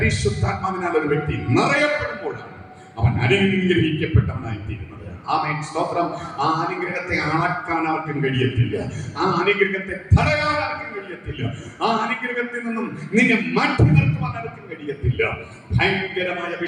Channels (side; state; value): both; identical; correlation 1.00